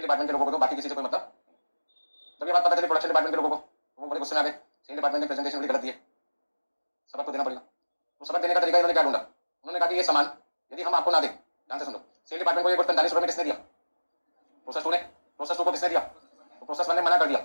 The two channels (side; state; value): both; inverted; correlation -1.00